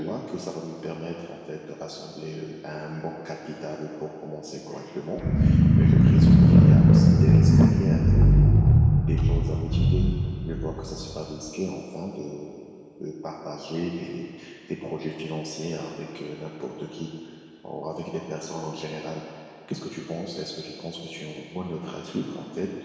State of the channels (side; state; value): both; identical; correlation 1.00